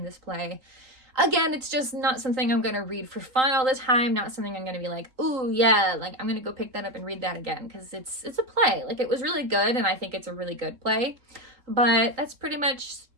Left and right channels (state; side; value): late; left; 3.9 ms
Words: this play. Again, it's just not something I'm going to read for fun all the time, not something I'm going to be like, ooh, yeah, like I'm going to go pick that up and read that again, because it's a play. Like, it was really good, and I think it's a really good play. But that's pretty much